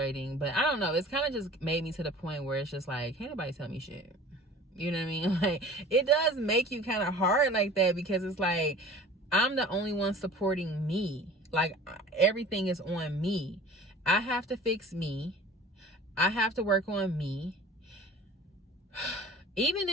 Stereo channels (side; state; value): both; normal; correlation 0.43